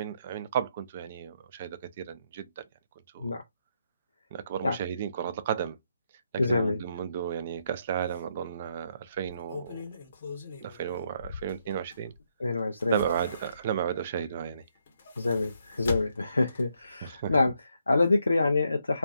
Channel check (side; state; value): both; inverted; correlation -0.76